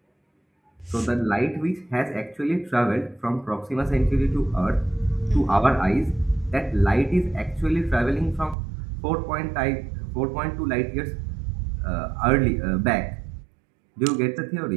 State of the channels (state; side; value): drops out; left; at 8.6 s